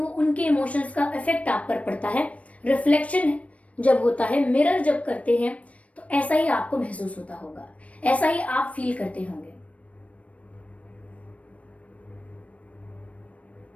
उनके इमोशंस का इफेक्ट आप पर पड़ता है। रिफ्लेक्शन जब होता है, मिरर जब करते हैं तो ऐसा ही आपको महसूस होता होगा, ऐसा ही आप फील करते होंगे।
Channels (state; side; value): late; right; 0.065 ms